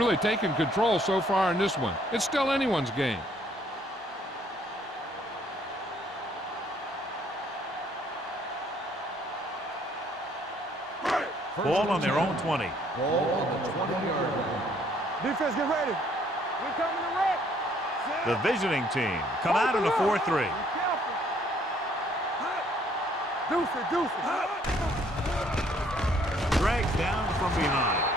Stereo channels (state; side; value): normal; both; correlation 0.64